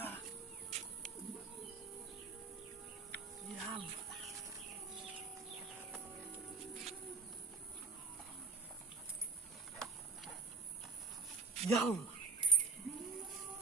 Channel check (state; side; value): quieter; left; 4.5 dB